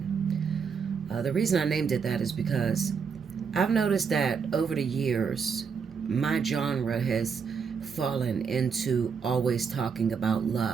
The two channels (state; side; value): quieter; left; 6.0 dB